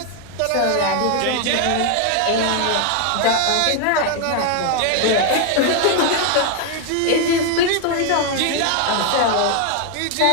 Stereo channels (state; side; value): different; both; correlation 0.01